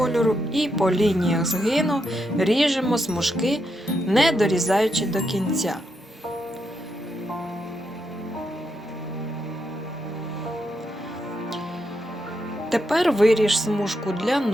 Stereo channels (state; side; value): normal; both; correlation 0.82